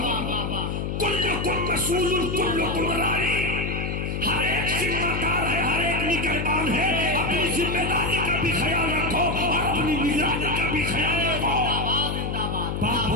کلکم مسئول کلکم راعی. ہر ایک ذمہ دار ہے, ہر ایک نگہبان ہے. اپنی ذمہ داری کا بھی خیال رکھو اور اپنی نگرانی کا بھی خیال رکھو. باپ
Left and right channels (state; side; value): noise; left; hum, 2 dB below the sound